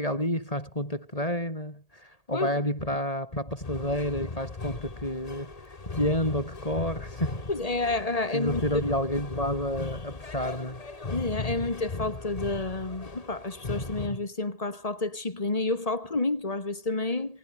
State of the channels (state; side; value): late; right; 1.8 ms